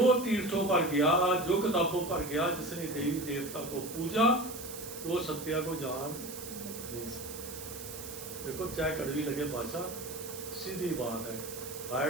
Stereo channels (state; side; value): noise; right; hiss, 11 dB below the sound